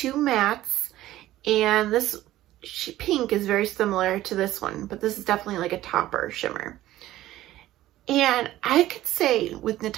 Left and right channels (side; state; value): left; quieter; 14.8 dB